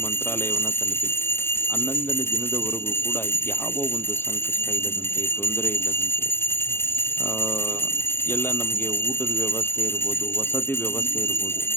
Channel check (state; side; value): late; right; 0.11 ms